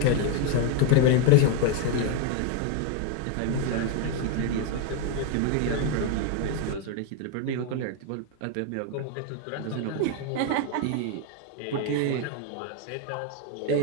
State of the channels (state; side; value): different; both; correlation 0.01